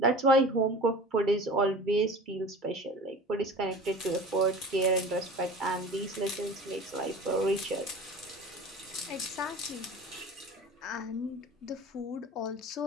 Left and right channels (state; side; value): normal; both; correlation 0.38